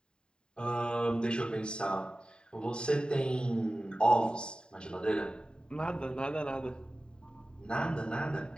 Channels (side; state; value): right; late; 0.049 ms